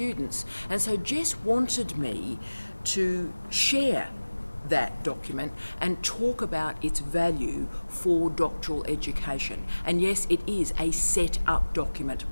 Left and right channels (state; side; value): inverted; both; correlation -1.00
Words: And so Jess wanted me to share that document and talk about its value for doctoral education. And yes, it is a set-up document.